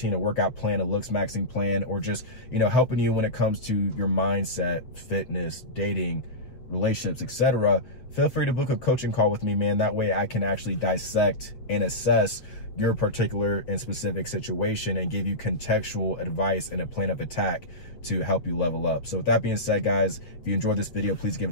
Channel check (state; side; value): late; right; 7.6 ms